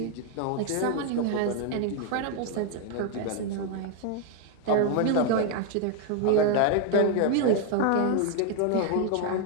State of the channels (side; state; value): both; different; correlation 0.00